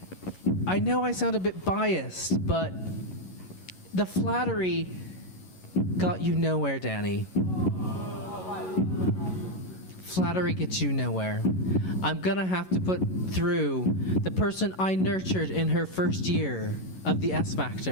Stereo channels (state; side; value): late; right; 11 ms